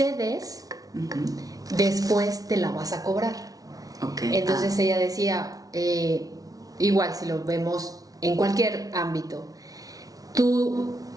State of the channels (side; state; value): left; late; 0.18 ms